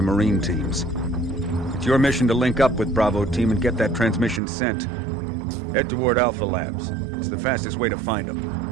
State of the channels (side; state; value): left; drops out; at 4.4 s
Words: Marine teams. It's your mission to link up with Bravo Team and get that transmission sent. Head toward Alpha Labs. It's the fastest way to find them.